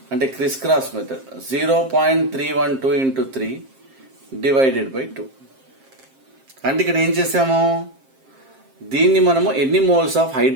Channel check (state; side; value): late; left; 7.5 ms